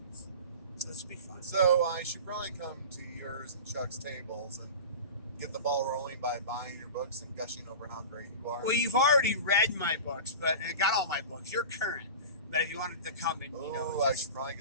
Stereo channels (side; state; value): both; inverted; correlation -0.32